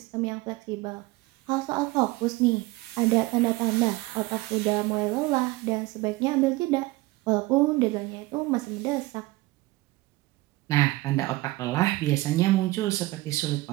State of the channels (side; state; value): left; quieter; 20.1 dB